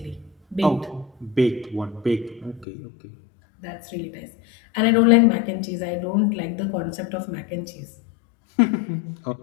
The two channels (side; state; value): right; drops out; at 2.7 s